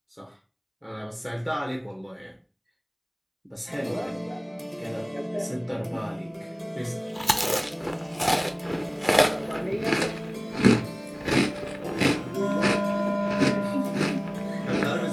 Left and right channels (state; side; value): identical; both; correlation 1.00